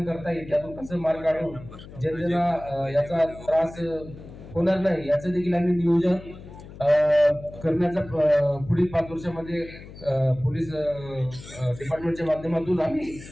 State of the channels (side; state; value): left; noise; hum, 16 dB below the sound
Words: करता येईल, त्यातून कसं मार्ग काढून जनतेला याचा त्रास होणार नाही याचं देखील आम्ही नियोजन करण्याचा पुढील 5 वर्षामध्ये पोलीस डिपार्टमेंटच्या माध्यमातून आम्ही